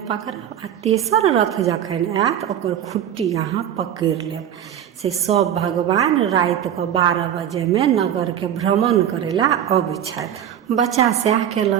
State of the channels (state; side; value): quieter; left; 10.1 dB